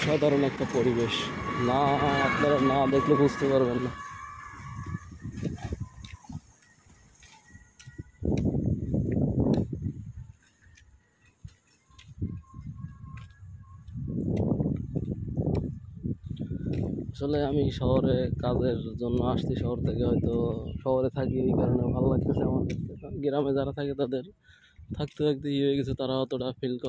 একটা পরিবেশ, না আপনারা না দেখলে বুঝতে পারবেন না। আসলে আমি শহরে কাজের জন্য আসছি, শহর থেকে হয়তো শহরে থাকি এই কারণে ভালো লাগতেছে আমার কাছে। গ্রামে যারা থাকে তাদের থাকতে থাকতে ইয়ে হয়ে গেছে, তারা অতটা ফিল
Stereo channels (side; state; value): both; identical; correlation 1.00